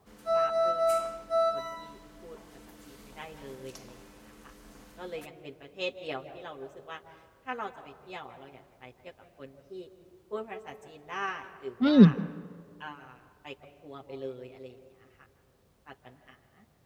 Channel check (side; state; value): both; identical; correlation 1.00